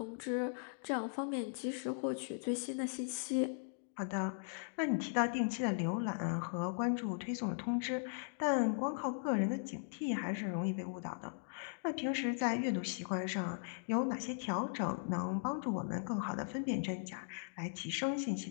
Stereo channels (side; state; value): right; silent; digital silence